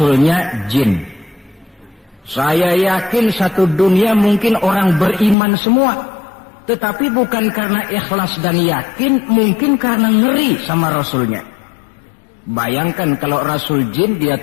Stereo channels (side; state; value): right; drops out; at 5.4 s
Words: jin. Saya yakin satu dunia mungkin orang beriman semua. Tetapi bukan karena ikhlas dan yakin, mungkin karena ngeri sama rasulnya. Bayangkan kalau rasul jin dia